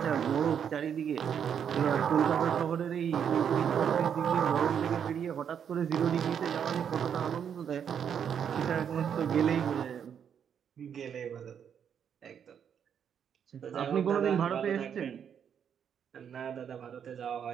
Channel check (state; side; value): quieter; left; 8.1 dB